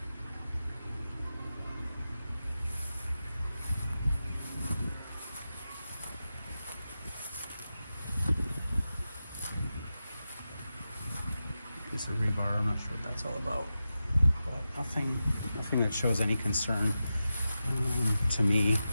piece of rebar. I'm not sure what that's all about, but nothing that shows any concern to me.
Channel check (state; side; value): inverted; both; correlation -0.92